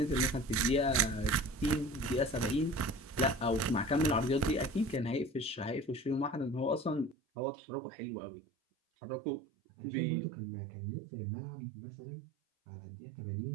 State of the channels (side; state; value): left; drops out; at 7.2 s